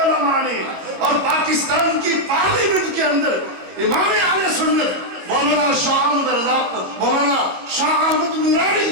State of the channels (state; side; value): late; left; 22 ms